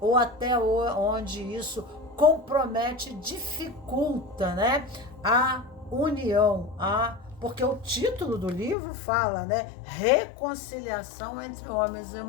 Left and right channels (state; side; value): drops out; right; at 8.8 s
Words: ou até onde isso compromete, dificulta, né, a união, porque o título do livro fala, né, reconciliação entre homens e